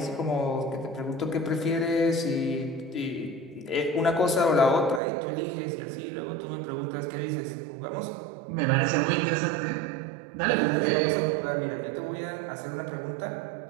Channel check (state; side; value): drops out; left; at 5.0 s